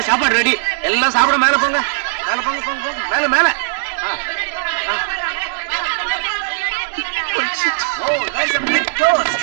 சாப்பாடு ரெடி. எல்லாம் சாப்பிட மேல போங்க. மேல போங்க போங்க போங்க. மேல மேல. Oh, there's a big toast.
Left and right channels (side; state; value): left; silent; digital silence